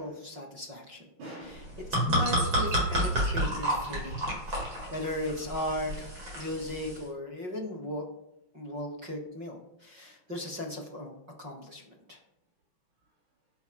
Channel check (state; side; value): late; left; 5.4 ms